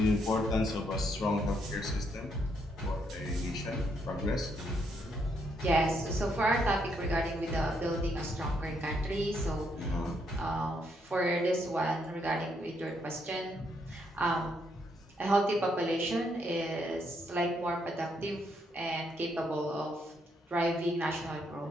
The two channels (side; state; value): both; normal; correlation 0.75